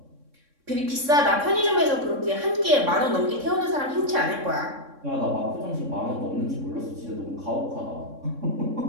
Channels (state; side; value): late; left; 3.6 ms